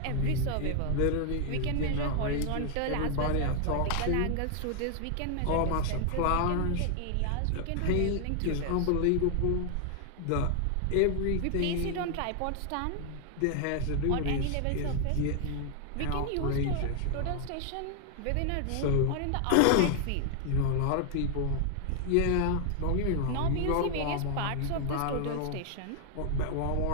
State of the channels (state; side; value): different; both; correlation 0.00